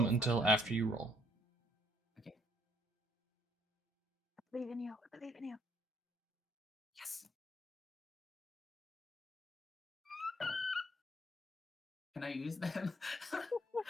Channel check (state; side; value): normal; both; correlation 0.66